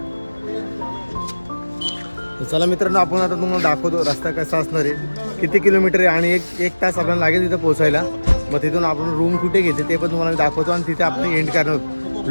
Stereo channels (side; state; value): both; inverted; correlation -1.00